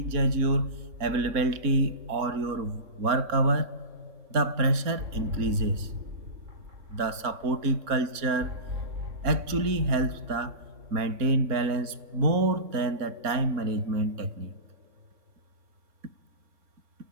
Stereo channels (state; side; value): late; left; 3.6 ms